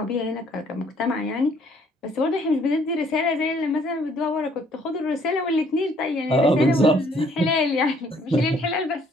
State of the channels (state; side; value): normal; both; correlation 0.63